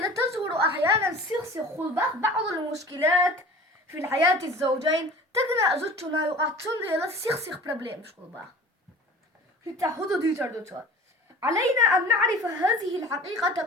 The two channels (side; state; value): both; normal; correlation 0.41